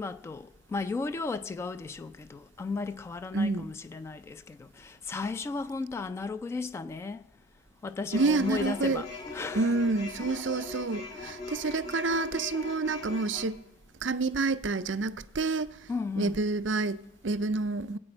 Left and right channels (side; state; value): both; normal; correlation 0.43